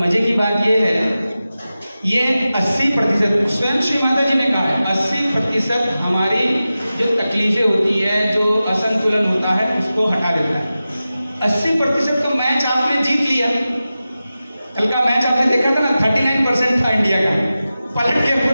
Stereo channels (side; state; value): both; inverted; correlation -0.94